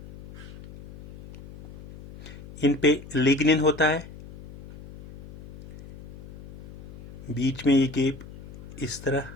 इन पे लिग्निन होता है, बीच में ये गैप इस तरह,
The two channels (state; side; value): noise; left; hum, 16 dB below the sound